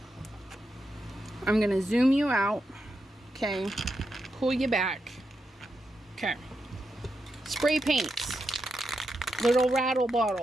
I'm going to zoom you out. Okay. Pull you back. Okay. Spray paints. Little rattle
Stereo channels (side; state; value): both; normal; correlation 0.86